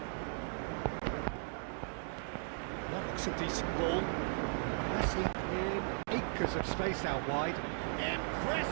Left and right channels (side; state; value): left; silent; 53 dB below the other